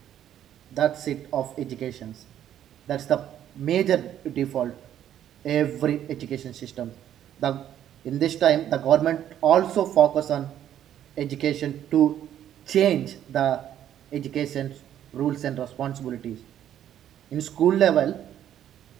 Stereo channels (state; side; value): quieter; left; 10.8 dB